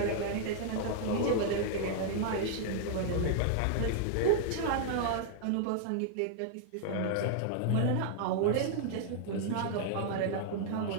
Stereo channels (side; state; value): both; different; correlation -0.01